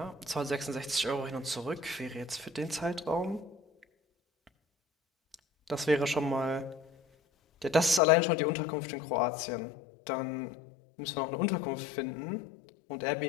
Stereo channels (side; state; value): right; drops out; at 8.0 s